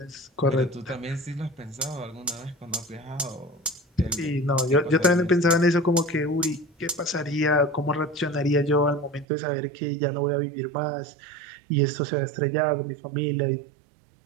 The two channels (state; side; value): drops out; left; at 9.2 s